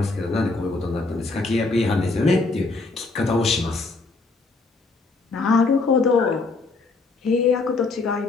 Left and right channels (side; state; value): right; quieter; 3.7 dB